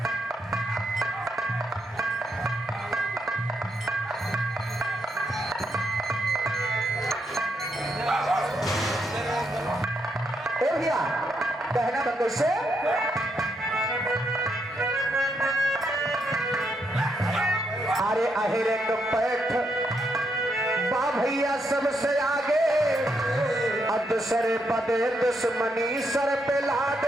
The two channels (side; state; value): both; normal; correlation 0.79